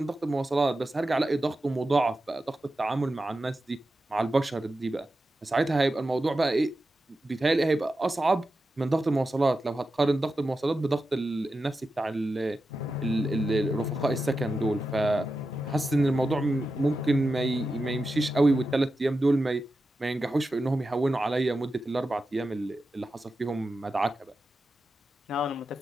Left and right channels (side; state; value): both; normal; correlation 0.91